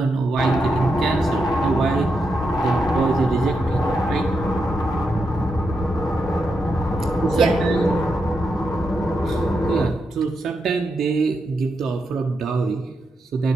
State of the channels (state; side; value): normal; both; correlation 0.84